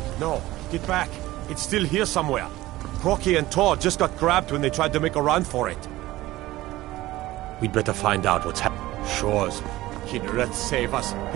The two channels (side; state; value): left; quieter; 17.1 dB